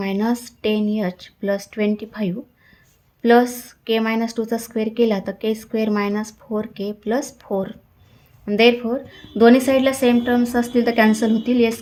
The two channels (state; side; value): identical; both; correlation 1.00